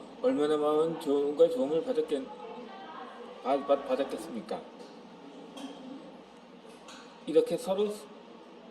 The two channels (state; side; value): identical; both; correlation 1.00